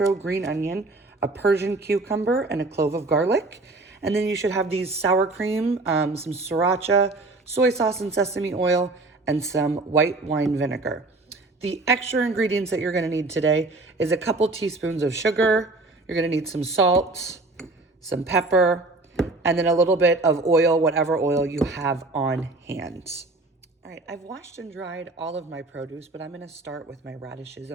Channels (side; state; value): left; quieter; 3.1 dB